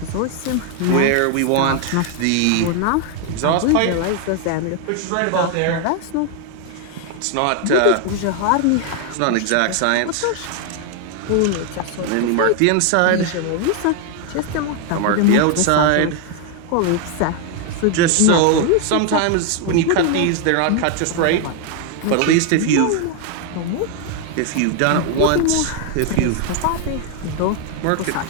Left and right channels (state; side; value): different; both; correlation 0.01